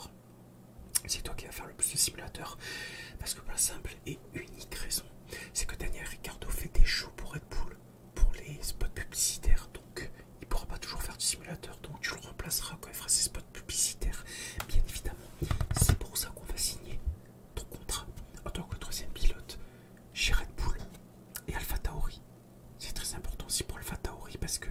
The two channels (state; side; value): identical; both; correlation 1.00